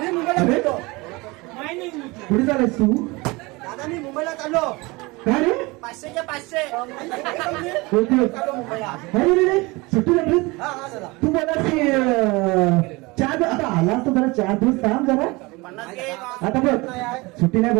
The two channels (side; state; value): left; quieter; 24.1 dB